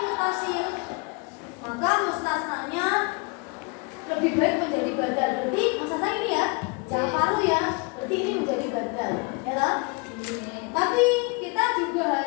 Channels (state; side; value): quieter; right; 31.7 dB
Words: maka mustasnanya lebih baik menjadi badal. Berarti mustasna ini ya, jangan paru ya. Berarti ini menjadi badal, ya toh? Tapi kita kita juga